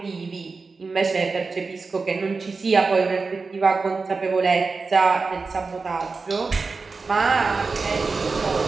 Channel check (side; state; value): left; quieter; 4.3 dB